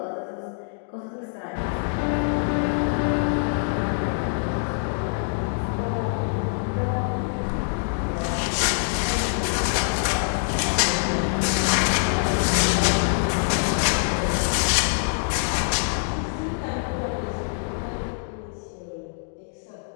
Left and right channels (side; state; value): right; silent; digital silence